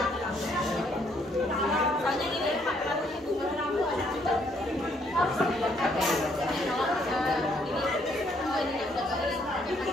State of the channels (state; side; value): normal; both; correlation 0.69